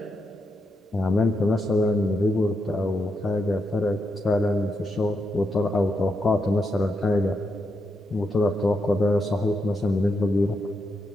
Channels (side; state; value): both; normal; correlation 0.83